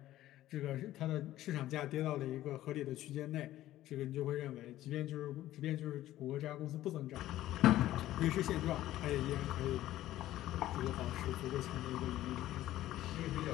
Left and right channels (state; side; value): quieter; right; 14.3 dB